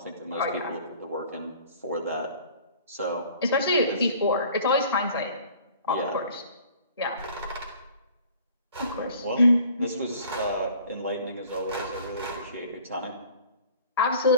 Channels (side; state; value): both; inverted; correlation -0.51